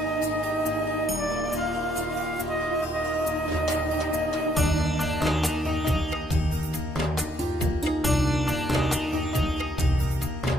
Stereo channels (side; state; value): both; normal; correlation 0.70